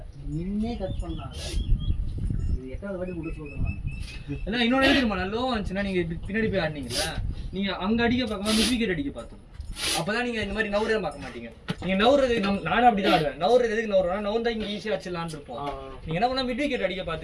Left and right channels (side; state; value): both; identical; correlation 1.00